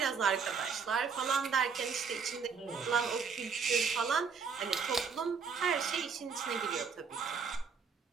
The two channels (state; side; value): quieter; left; 5.7 dB